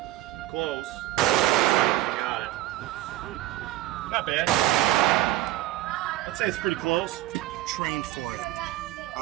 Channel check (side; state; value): left; quieter; 15.7 dB